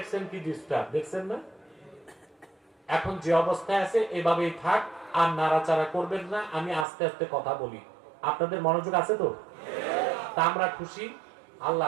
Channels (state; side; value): drops out; left; at 6.9 s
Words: কি ডিস্টার্ব, দেখছেন না? এখন যে অবস্থায় আছে এভাবেই থাক, আর নাড়াচাড়া করবেন না। আমি আস্তে আস্তে কথা বলি, আপনাদের মনোযোগ আছে তো? তা আমরা খুশি,